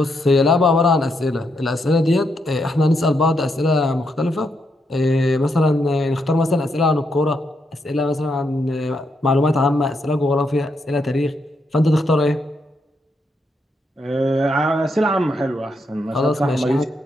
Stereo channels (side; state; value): both; normal; correlation 0.80